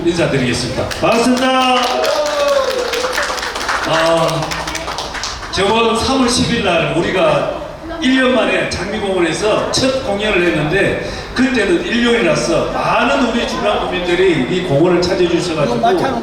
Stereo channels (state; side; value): identical; both; correlation 1.00